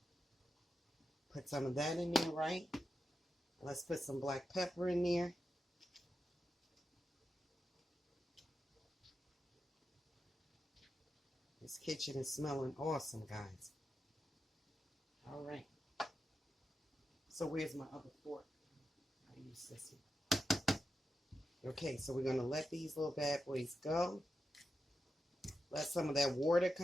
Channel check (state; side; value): normal; both; correlation 0.89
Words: Put some of that in there, right? Let's put some black pepper in there. This kitchen is smelling awesome, guys. All right. So where's my other fork? I use this one. Okay, so we're going to let these little bad boys go. Let some of that water